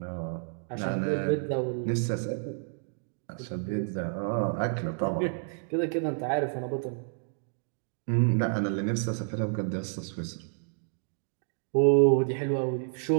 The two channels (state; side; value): silent; left; digital silence